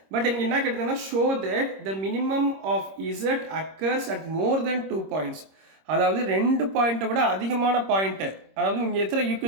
But இங்கே என்ன கேட்டிருந்தாங்கன்னா show that the minimum of z occurs at more than 2 points. அதாவது 2 பாயிண்ட்டை விட அதிகமான பாயிண்ட்டு. அதாவது இங்கே எத்தனை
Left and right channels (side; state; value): left; late; 26 ms